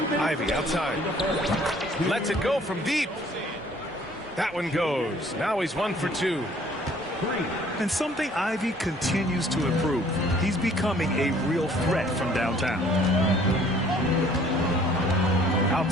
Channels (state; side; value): normal; both; correlation 0.57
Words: outside. Lets it go from deep. That one goes. Now he's 1 for 2. And something Ivy continues to improve. He's becoming a real threat from downtown.